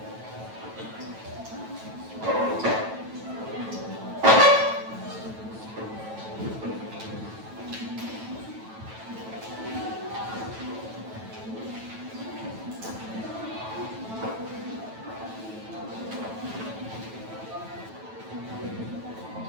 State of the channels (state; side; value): late; left; 9.1 ms